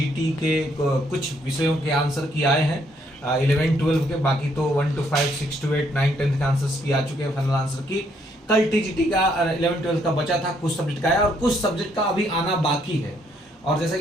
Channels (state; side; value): normal; both; correlation 0.70